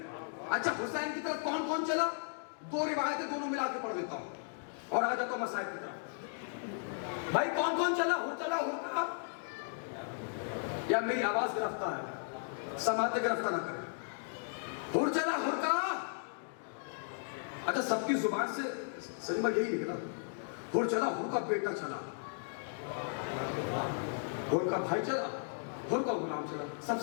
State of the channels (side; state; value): right; silent; digital silence